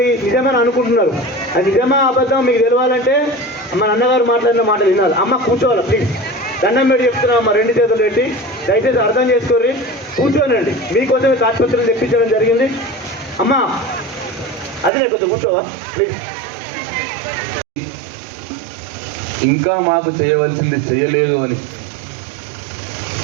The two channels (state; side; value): drops out; left; at 14.9 s